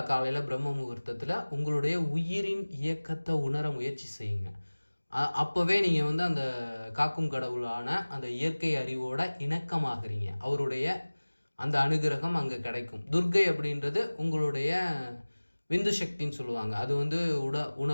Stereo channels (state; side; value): inverted; both; correlation -1.00